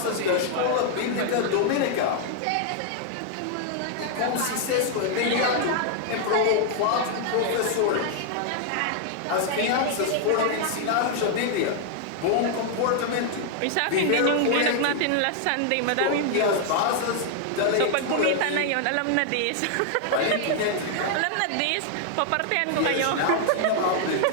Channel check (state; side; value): different; both; correlation 0.00